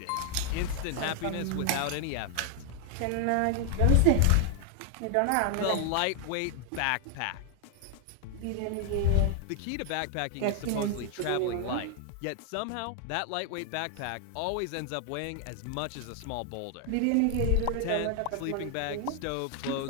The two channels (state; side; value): different; both; correlation 0.00